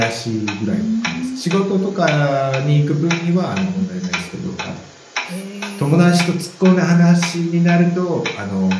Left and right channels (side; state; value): both; identical; correlation 1.00